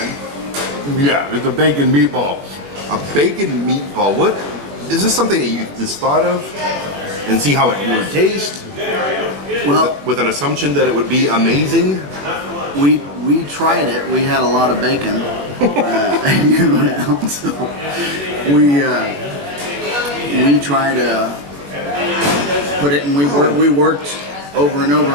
Yeah, it's a bacon meatball. A bacon meatball. What? Is this something that you just thought of and see how it would taste? Well, With an assumption that it would be amazing? we tried it. We had a lot of bacon around, so we tried to put it, and we worked over and over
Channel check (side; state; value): left; late; 21 ms